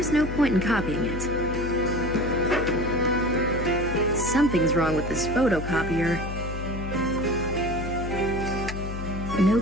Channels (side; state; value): left; noise; hum, 7 dB below the sound